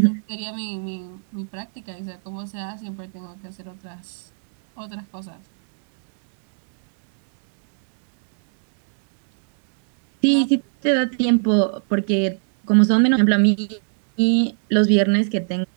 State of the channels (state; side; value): silent; left; digital silence